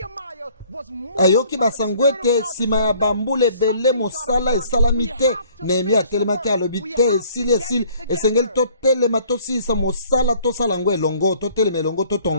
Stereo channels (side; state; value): both; inverted; correlation -0.56